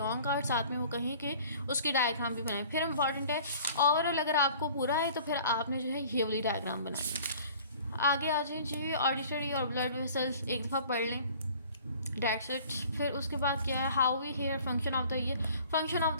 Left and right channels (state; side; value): inverted; both; correlation -0.48